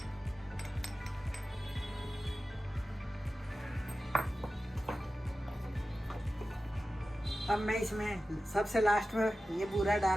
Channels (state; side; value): normal; both; correlation 0.94